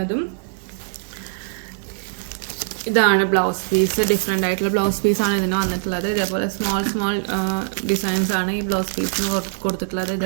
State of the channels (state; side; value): silent; left; digital silence